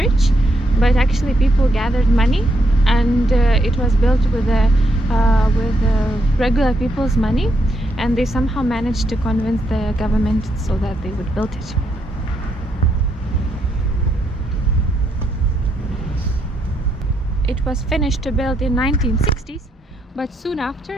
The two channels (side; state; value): both; normal; correlation 0.77